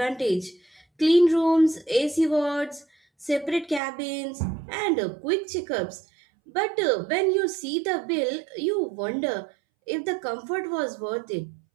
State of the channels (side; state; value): left; drops out; at 3.8 s